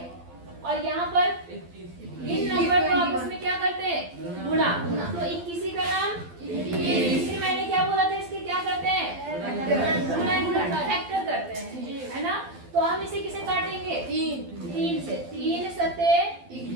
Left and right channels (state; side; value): late; left; 12 ms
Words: और यहाँ पर इन नंबर को आपस में क्या करते हैं? गुणा। तो 21 का नाम, इसलिए मैंने क्या बोला था, इसके क्या करते हैं? फैक्टर करते हैं, है ना। तो हम इसे किसे काटेंगे? 3 से। 3 सते